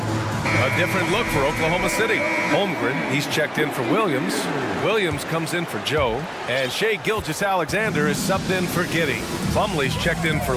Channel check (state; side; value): identical; both; correlation 1.00